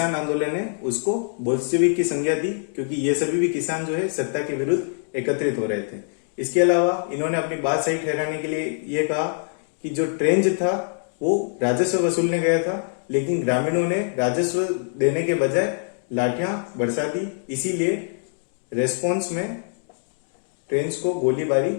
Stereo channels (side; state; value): right; silent; digital silence